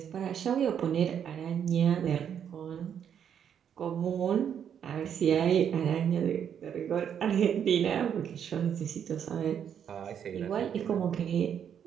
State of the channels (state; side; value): quieter; left; 8.5 dB